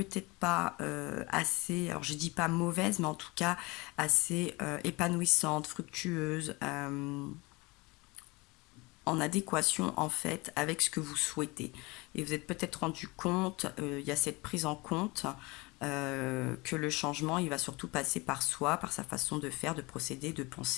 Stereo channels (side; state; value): right; quieter; 24.6 dB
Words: pas assez, alors je dis pas mauvaise, mais en tout cas assez épanouissante, fructueuse, en adéquation en fait avec ce que vous souhaitez. Et vous êtes peut-être rendu compte, il y a cette prise en compte que le changement, il va surtout passer par soi, par sa façon de faire, de procéder, de